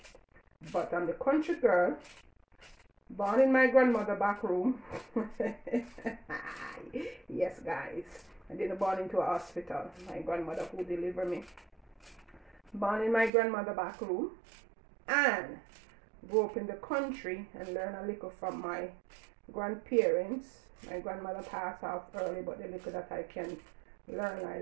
but I'm the country girl, born in my grandmother back room. Yes guys, I didn't born into a hospital. My grandmother who delivered me, born in my grandmother back room, and grew up in the country and learn a little from my grandparents. My grandmother passed off early, but the little that I can learn, I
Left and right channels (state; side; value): drops out; left; at 13.3 s